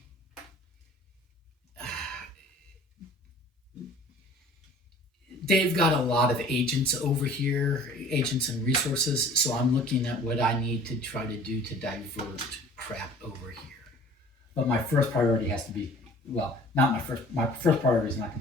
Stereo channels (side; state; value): both; normal; correlation 0.48